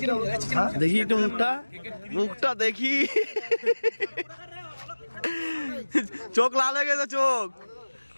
দেখি একটু মুখটা, মুখটা দেখি। চোখ লাল হয়ে গেছে,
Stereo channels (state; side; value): inverted; both; correlation -1.00